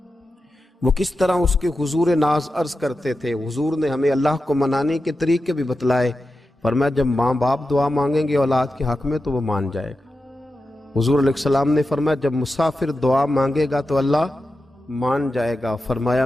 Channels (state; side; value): normal; both; correlation 0.91